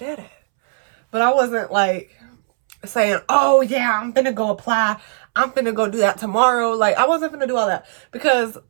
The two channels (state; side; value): silent; left; 67 dB below the other